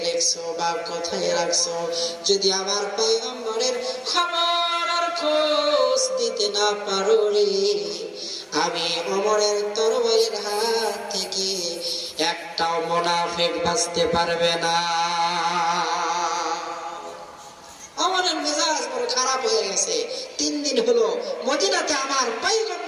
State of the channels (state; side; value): identical; both; correlation 1.00